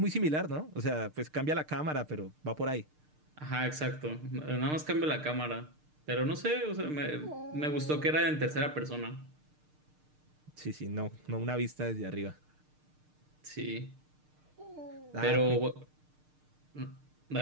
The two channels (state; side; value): late; left; 6.6 ms